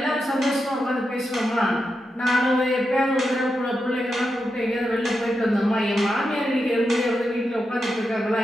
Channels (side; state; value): both; normal; correlation 0.87